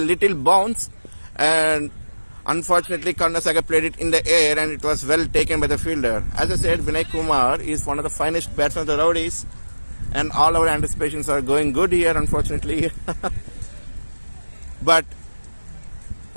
little bounce and unfortunately, Karnasagar played it in the air and it was well taken by the fielder. As I said, Vinay Kumar is one of the finest batsmen of the Roadies and all our anticipations are going good here, unfortunately. But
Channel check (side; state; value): both; inverted; correlation -1.00